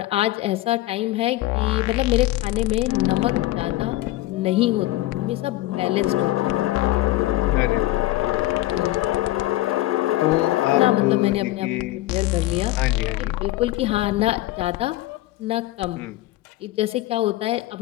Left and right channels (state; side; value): quieter; right; 16.8 dB